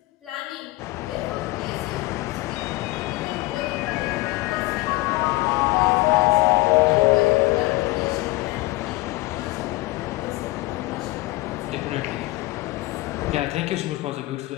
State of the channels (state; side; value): quieter; right; 20.5 dB